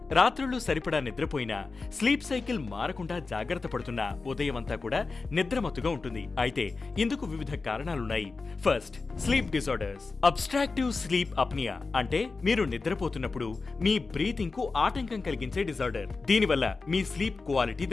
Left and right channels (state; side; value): quieter; right; 4.1 dB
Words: రాత్రుళ్ళు సరిపడా నిద్రపోయినా స్లీప్ సైకిల్ మారకుండా జాగ్రత్త పడుతున్నా ఉదయమంతా కూడా నిద్రమత్తుగా ఉంటుంది. అయితే ఇందుకు వివిధ కారణాలున్నాయి. First, sleep disorders. Obstructive sleep apnoea అంటే మీరు నిద్రపోతున్నప్పుడు మీ బ్రీతింగ్ కు ఆటంకం కలిగించే డిజార్డర్. దీనివల్ల మీ స్లీప్ క్వాలిటీ